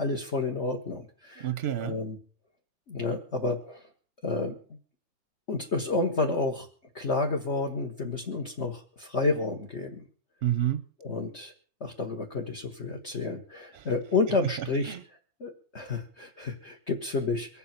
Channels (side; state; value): both; normal; correlation -0.11